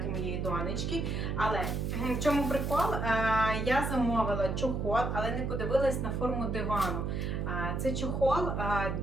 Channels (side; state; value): right; noise; hum, 1 dB below the sound